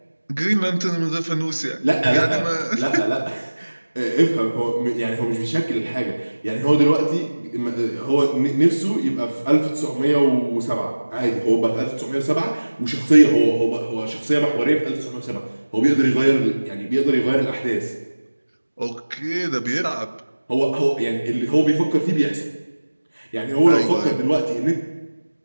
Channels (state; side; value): inverted; both; correlation -1.00